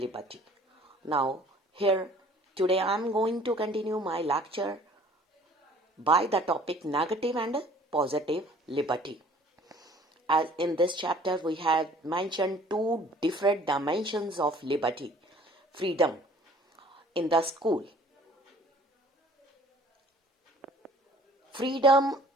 Now, here today I am going to continue my lecture by the topic Negative and Positive Liberty. As in this chapter, we have mentioned two different dimensions of liberty, freedom in the school. Freedom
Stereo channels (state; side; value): normal; both; correlation 0.52